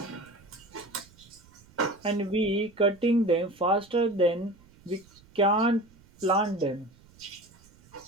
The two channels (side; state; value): right; noise; rumble, 27 dB below the sound